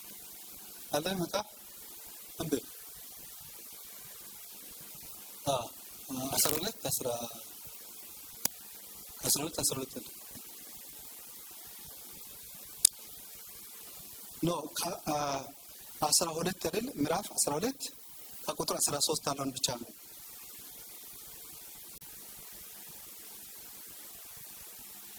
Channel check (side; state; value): both; identical; correlation 1.00